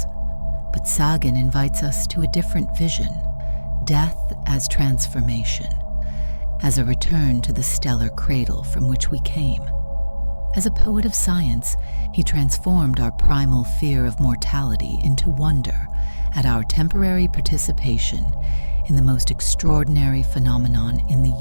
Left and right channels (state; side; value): inverted; both; correlation -1.00